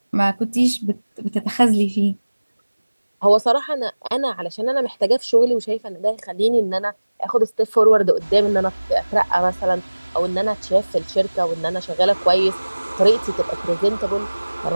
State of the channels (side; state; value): both; inverted; correlation -1.00